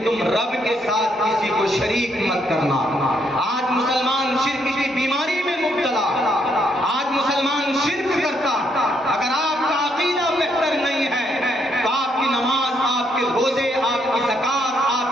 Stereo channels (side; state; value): both; normal; correlation 0.74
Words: تم رب کے ساتھ کسی کو شریک مت کرنا. آج مسلمان شرک کی بیماری میں مبتلا، آج مسلمان شرک کرتا. اگر آپ کا عقیدہ بہتر نہیں ہے تو آپ کی نماز، آپ کے روزے، آپ کی زکات، آپ